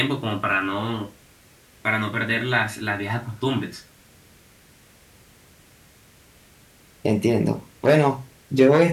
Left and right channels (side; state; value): both; identical; correlation 1.00